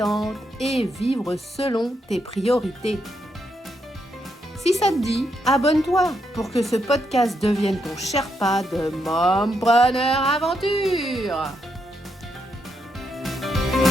et vivre selon tes priorités. Si ça te dit, abonne-toi pour que ce podcast devienne ton Sherpa de Mompreneur Aventure.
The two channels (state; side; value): normal; both; correlation 0.80